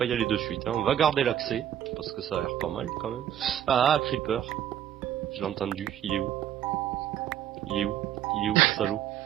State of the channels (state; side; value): quieter; left; 10.7 dB